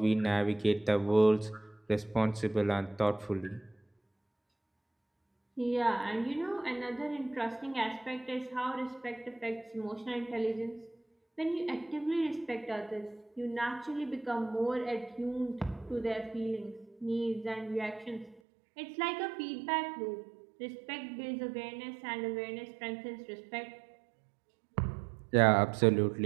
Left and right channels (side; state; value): left; drops out; at 18.4 s